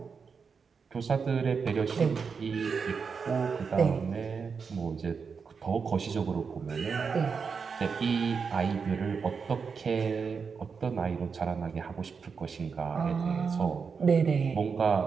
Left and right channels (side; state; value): left; quieter; 5.6 dB